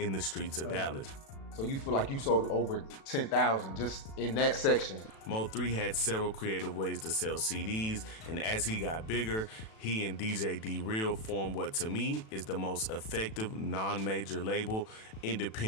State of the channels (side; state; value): right; late; 36 ms